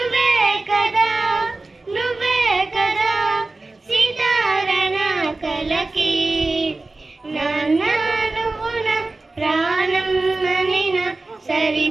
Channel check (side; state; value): left; quieter; 3.3 dB